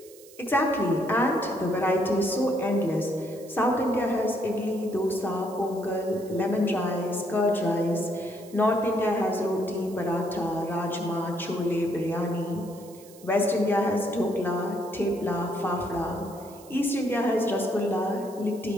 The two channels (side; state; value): right; noise; hiss, 22 dB below the sound